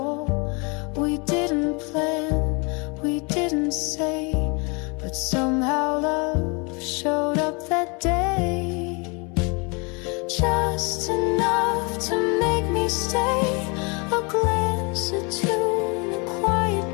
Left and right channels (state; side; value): quieter; right; 31.3 dB